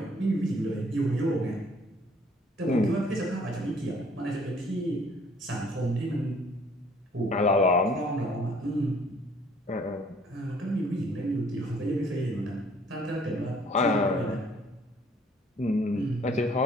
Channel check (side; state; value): both; normal; correlation 0.59